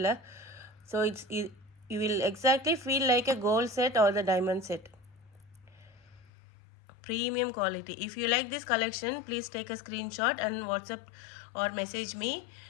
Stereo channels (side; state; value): right; drops out; at 6.3 s